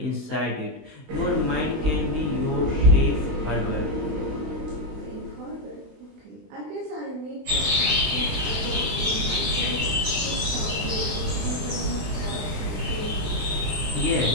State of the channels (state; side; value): late; left; 20 ms